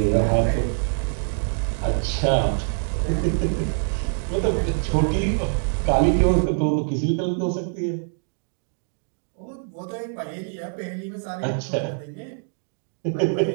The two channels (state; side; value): silent; left; 62 dB below the other